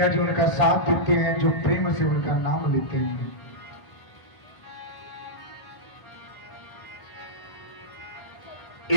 जी उनका साथ देते हैं, जो प्रेम से उनका नाम लेते हैं।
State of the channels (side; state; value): right; late; 1.0 ms